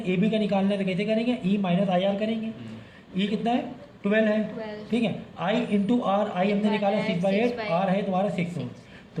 AB का निकालना है तो कैसे करेंगे, E माइनस IR करेंगे। E कितना है, 12 है। ठीक है, I इंटू R, I हमने निकाला 6/8, R है तुम्हारा 6 ओम।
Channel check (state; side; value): identical; both; correlation 1.00